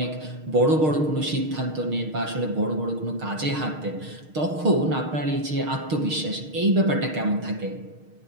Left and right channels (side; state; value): left; late; 6.5 ms